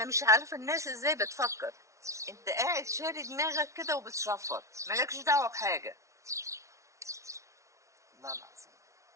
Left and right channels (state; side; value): late; left; 0.14 ms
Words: مش عارفه الناس ازاي بتفكر. انت قاعد شاري دماغك كده وبتصفر، مالكش دعوه بحاجه. والله